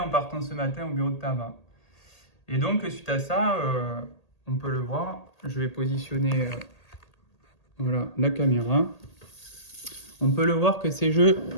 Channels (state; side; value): late; right; 1.8 ms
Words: partant ce matin au bureau de tabac. Et donc, suite à ça, on peut le voir. Je vais positionner la caméra. On peut le voir que ces jeux